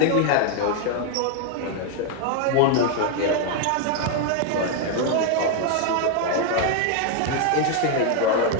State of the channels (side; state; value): both; different; correlation 0.01